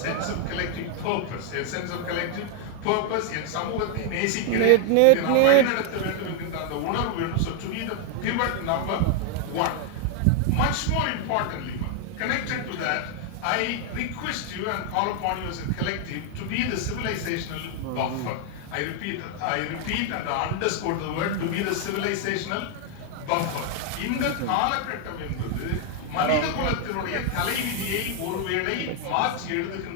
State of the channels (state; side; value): different; both; correlation 0.00